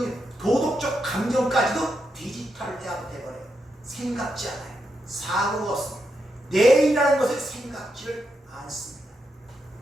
일, 도덕적 감정까지도 디지털 대화가 돼버려요. 생각지 않아요. 사고가 없습니다. 내일이라는 것을 생각지를 않습니다.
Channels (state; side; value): normal; both; correlation 0.83